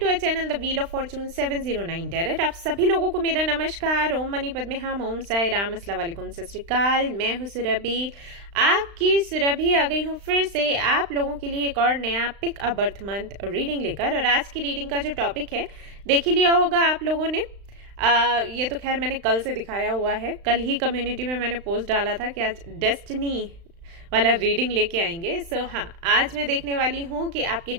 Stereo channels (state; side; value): late; left; 35 ms